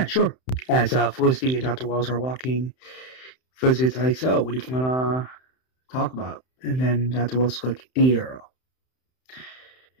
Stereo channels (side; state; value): right; late; 31 ms